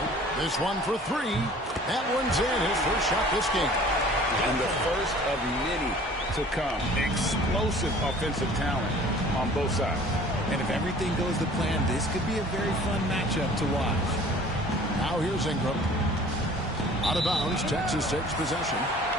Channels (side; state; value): both; normal; correlation 0.49